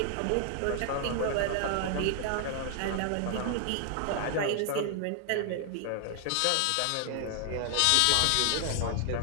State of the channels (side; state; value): both; different; correlation 0.00